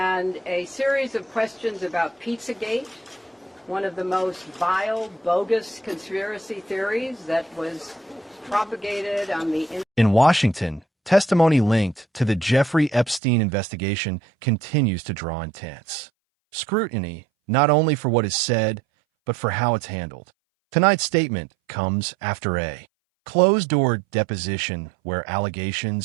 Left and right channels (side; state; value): left; drops out; at 13.2 s